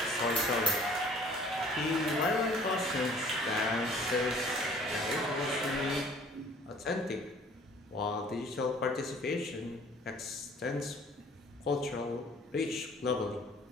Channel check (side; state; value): both; normal; correlation 0.53